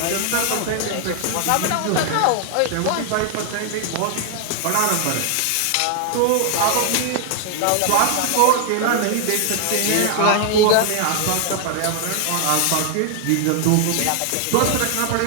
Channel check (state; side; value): different; both; correlation 0.00